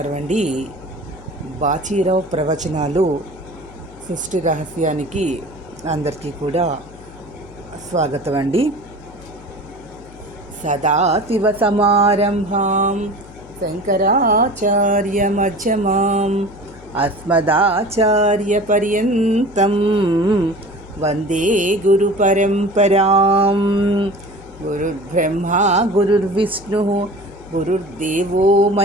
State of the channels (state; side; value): noise; left; hum, 20 dB below the sound